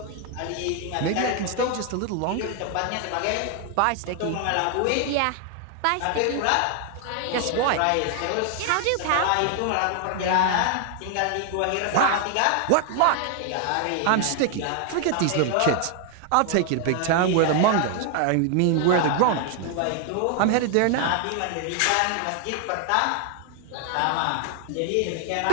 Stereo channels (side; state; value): both; different; correlation 0.00